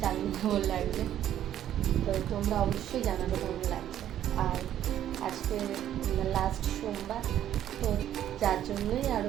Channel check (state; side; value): quieter; left; 11.3 dB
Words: জানি না কেমন লাগবে, তো তোমরা অবশ্যই জানাবে কেমন লাগছে। আর আজকে লাস্ট সোমবার, তো যার জন্যই